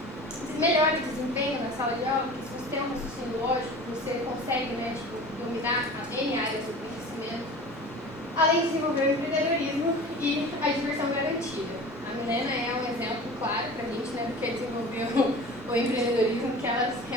Você melhora o desempenho na sala de aula, porque se você tem um raciocínio lógico, você consegue, né, dominar as N áreas do conhecimento, além de desenvolver o empreendedorismo e a diversão garantida. A Milena é um exemplo claro para a gente, né, do que é desenvolver o empreendedorismo, que ela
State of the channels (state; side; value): normal; both; correlation 0.38